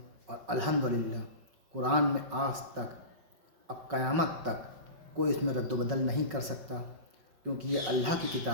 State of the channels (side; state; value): left; late; 5.4 ms